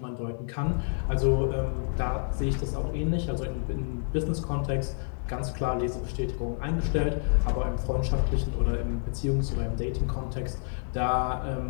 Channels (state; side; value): silent; right; digital silence